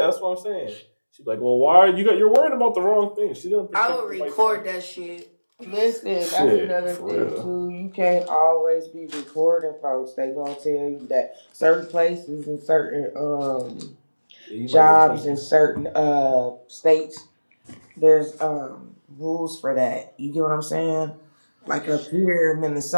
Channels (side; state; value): both; inverted; correlation -1.00